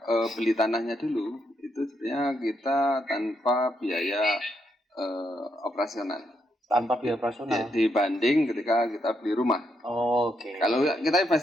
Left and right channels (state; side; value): normal; both; correlation 0.78